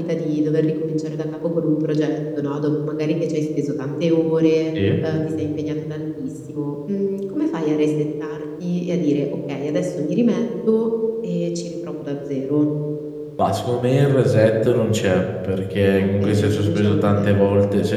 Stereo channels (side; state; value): both; identical; correlation 1.00